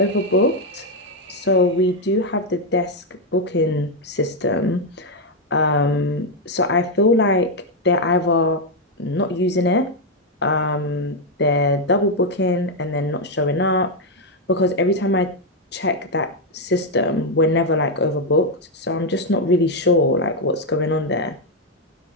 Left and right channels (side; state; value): both; normal; correlation 0.02